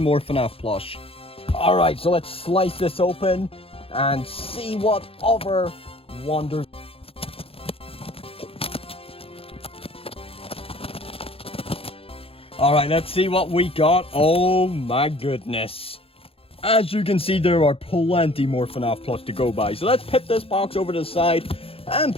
FNAF plush. Alright, so let's slice this open and see what other wonders. Alright, let's see what we got. Oh my goodness. As you can see, there are plenty more FNAF plush to go by. So let's put this box over to the side and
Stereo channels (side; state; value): right; late; 0.27 ms